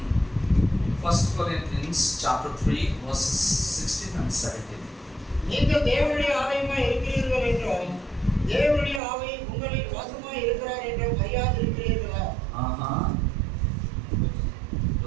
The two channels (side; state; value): left; drops out; at 9.0 s